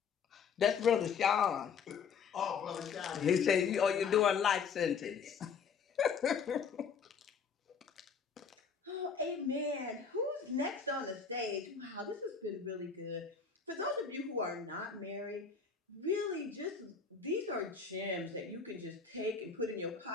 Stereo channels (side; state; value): right; quieter; 6.0 dB